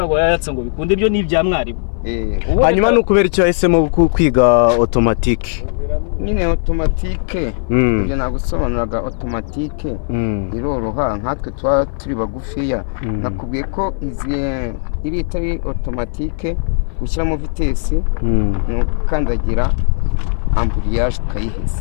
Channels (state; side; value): silent; right; 60 dB below the other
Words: yayatsa ngo bikunde, ibyo ni ibya mwarimu. Hanyuma n'ukubera icyo yahisemo kwiga automatique. Nyine automatique ibyo nagusobanuraga automatique iroroha nkatwe twa turi bagufiya. Nakubwiye ko iri itari automatique ushyiramo vitesi no kandagira amburiyaje